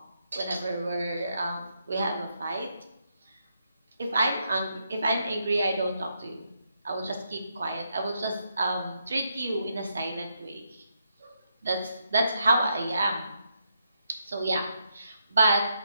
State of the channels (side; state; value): both; inverted; correlation -0.80